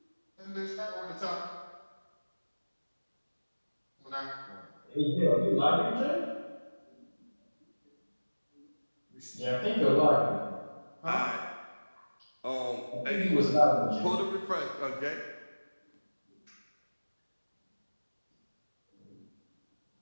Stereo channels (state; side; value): inverted; both; correlation -1.00